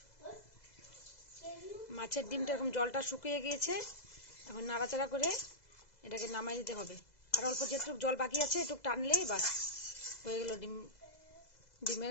মাছের ডিমটা এরকম জলটা শুকিয়ে গিয়েছে। এখন নাড়াচাড়া করে এটাকে নামাই দিতে হবে। আর অল্প যেটুকু জল বাকি আছে একটু টানলেই বাস হয়ে গেল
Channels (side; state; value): right; late; 2.0 ms